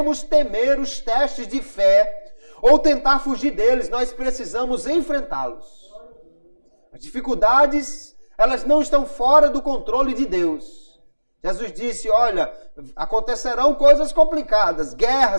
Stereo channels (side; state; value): both; inverted; correlation -1.00